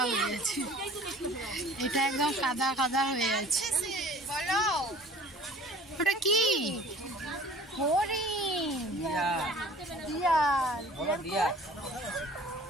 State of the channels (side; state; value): both; normal; correlation 0.47